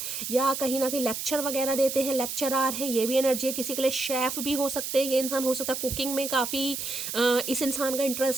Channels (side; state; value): right; noise; hiss, 5 dB below the sound